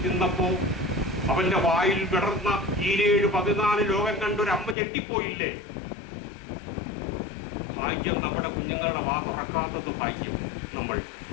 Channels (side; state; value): right; drops out; at 4.8 s